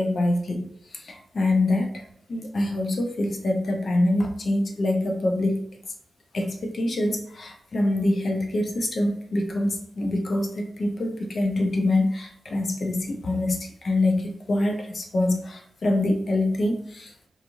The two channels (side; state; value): both; normal; correlation 0.94